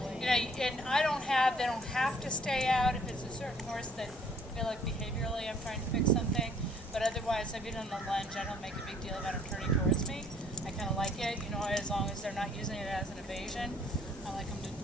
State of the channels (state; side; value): normal; both; correlation 0.60